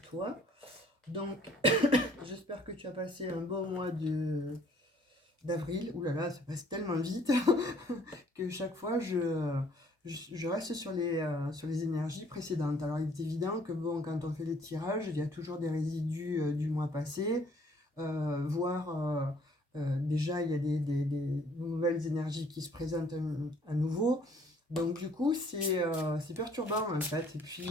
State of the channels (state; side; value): normal; both; correlation 0.60